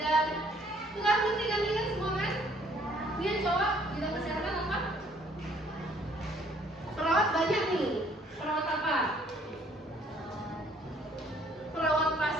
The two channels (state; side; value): normal; both; correlation 0.61